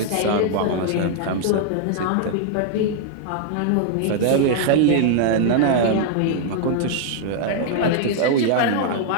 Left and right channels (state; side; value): different; both; correlation 0.00